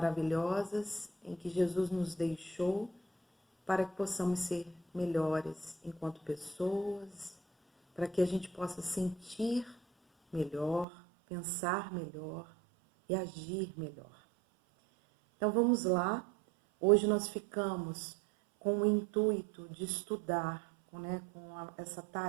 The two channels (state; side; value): drops out; left; at 10.9 s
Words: em que Jesus nos deixou para que possamos ser melhores enquanto pessoas, para que a gente possa sentir melhor, pensar melhor e agir melhor. Então vamos lá, hoje nós ficamos com o intuito de estudar, com essa